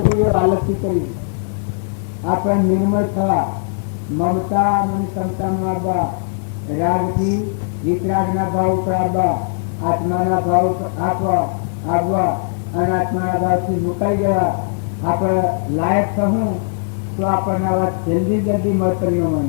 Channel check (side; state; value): right; silent; digital silence